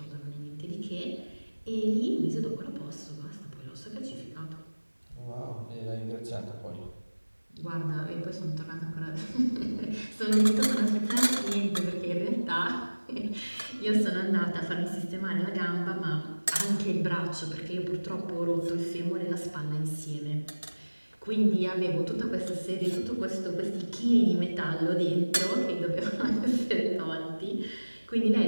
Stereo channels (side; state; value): both; inverted; correlation -1.00